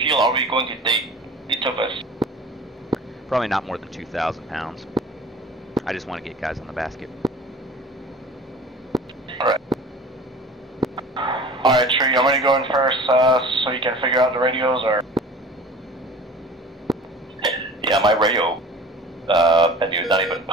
are we going to take, each of us? Probably not more than 2,000 pounds. I just want to get guys on the basket. Alright. Alright, Tree, I'm going to go in first so you can figure out the radios, or? Yeah, my radio menu is not even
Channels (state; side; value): normal; both; correlation 0.42